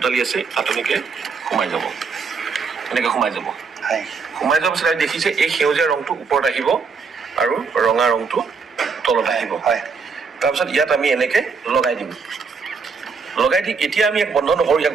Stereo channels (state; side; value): quieter; left; 5.1 dB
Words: আছে, তাত এনেকৈ সোমাই যাব, এনেকৈ সোমাই যাব। হয়। সোমাই যোৱাৰ পিছত দেখিছে এই সেউজীয়া ৰংটো ওপৰত আহিব আৰু ৰঙা ৰংটো তলত আহিব। হয়। তাৰপিছত ইয়াত আমি এনেকৈ লগাই দিম। লগাই দি এতিয়া আমি ইয়াক বন্ধ নকৰোঁ। ইয়াক